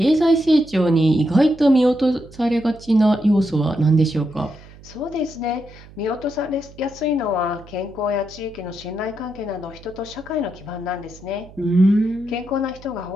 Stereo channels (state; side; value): noise; right; hum, 21 dB below the sound